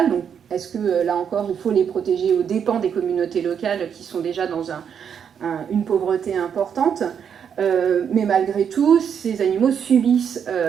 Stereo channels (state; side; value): quieter; left; 7.7 dB